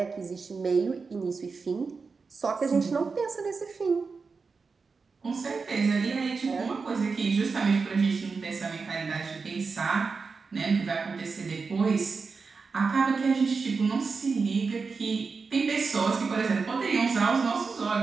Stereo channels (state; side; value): quieter; left; 4.7 dB